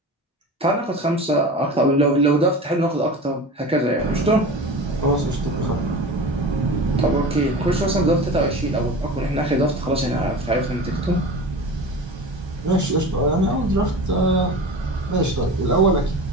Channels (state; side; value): normal; both; correlation 0.33